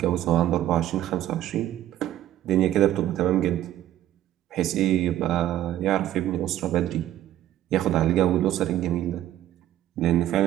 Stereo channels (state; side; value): quieter; left; 12.9 dB